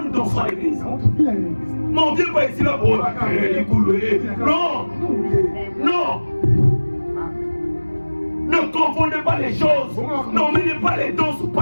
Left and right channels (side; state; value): both; inverted; correlation -1.00